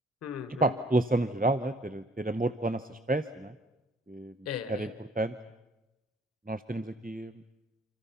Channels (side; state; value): both; normal; correlation 0.59